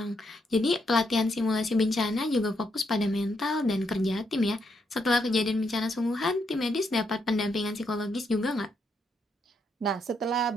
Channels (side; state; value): both; normal; correlation 0.78